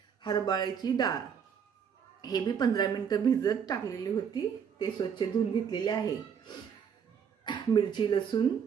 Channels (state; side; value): quieter; left; 7.4 dB